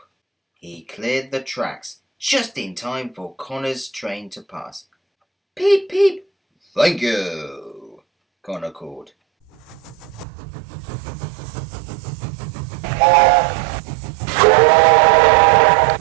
He cleared the tracks just in time for Connor's train to pass. Peep, peep! Thank you, Connor called.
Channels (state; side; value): drops out; left; at 10.2 s